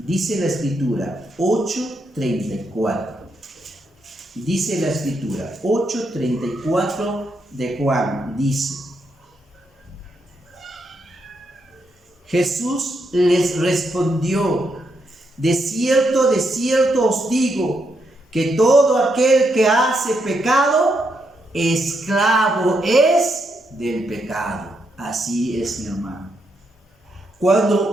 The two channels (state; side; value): normal; both; correlation 0.80